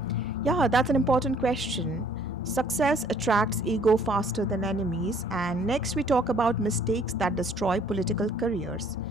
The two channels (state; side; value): normal; both; correlation 0.59